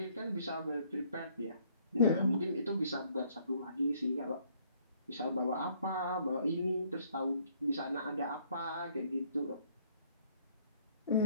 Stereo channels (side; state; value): both; inverted; correlation -0.64